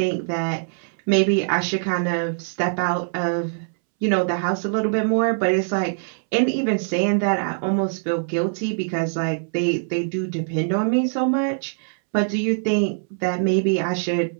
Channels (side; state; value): left; silent; 64 dB below the other